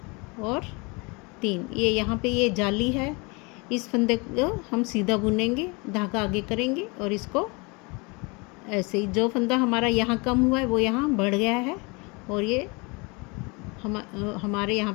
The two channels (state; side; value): quieter; right; 28.8 dB